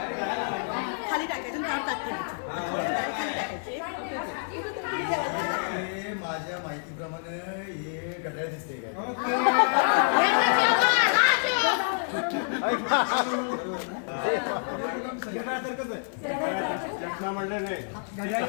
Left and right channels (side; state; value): right; silent; 59 dB below the other